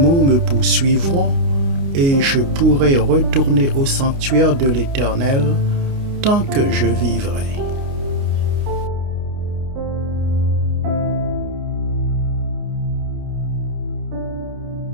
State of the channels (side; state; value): left; late; 29 ms